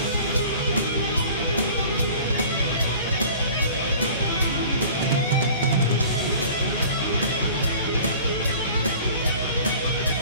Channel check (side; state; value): both; inverted; correlation -0.45